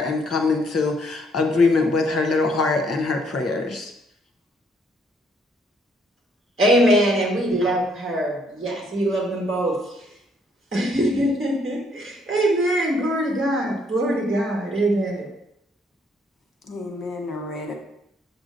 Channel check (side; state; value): both; normal; correlation 0.67